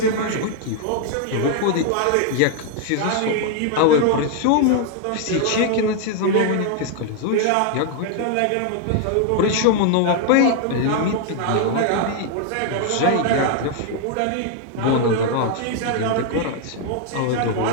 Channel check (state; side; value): different; both; correlation 0.00